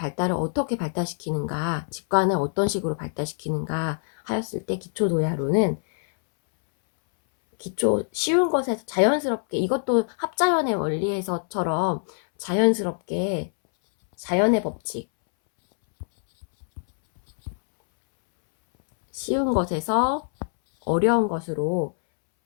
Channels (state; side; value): silent; right; 62 dB below the other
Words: 어떻게 발달시키는가, 직관을 어떤 식으로 발달시키는가 하였을 때 기초 도야론은 쉬운 것에서 자연스럽게, 이것도 합자연의 원리에서처럼 자연스럽게 자연의 법칙, 쉬운 것에서 어려운 것으로